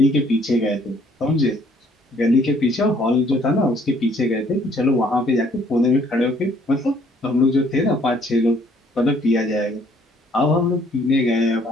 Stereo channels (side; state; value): both; normal; correlation 0.62